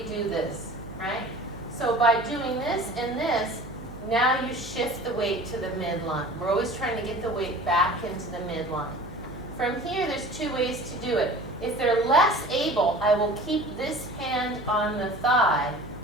this, right? So by doing this and this, now you shift the weight to the midline. We're always trying to get the weight back into the midline. From here, there's two ways to do it. If they're less able, I will keep this hand on the thigh,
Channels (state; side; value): noise; right; hum, 15 dB below the sound